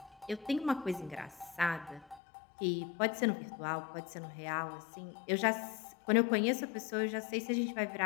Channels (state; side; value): drops out; right; at 2.2 s